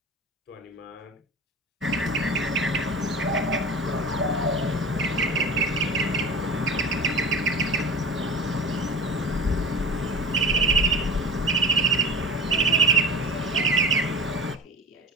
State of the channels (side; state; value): both; normal; correlation 0.33